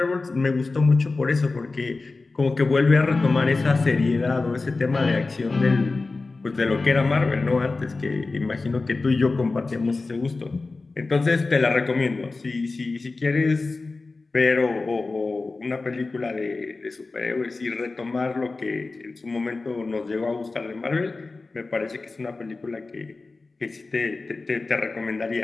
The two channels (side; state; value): right; quieter; 3.6 dB